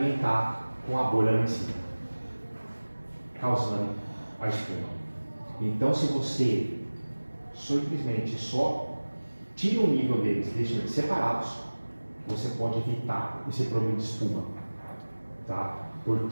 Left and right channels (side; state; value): both; inverted; correlation -1.00